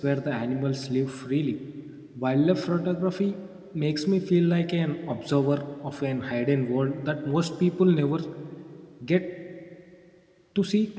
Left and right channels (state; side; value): identical; both; correlation 1.00